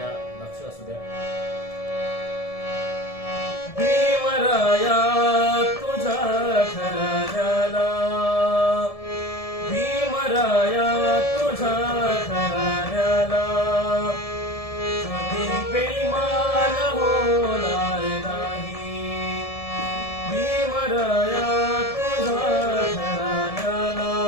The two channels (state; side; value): late; right; 1.7 ms